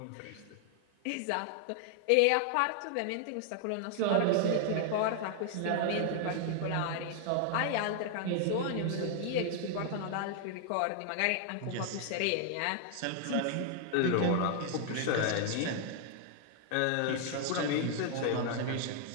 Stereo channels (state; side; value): different; both; correlation 0.00